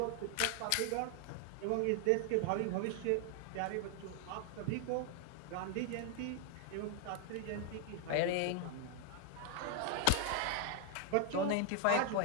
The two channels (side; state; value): both; different; correlation 0.00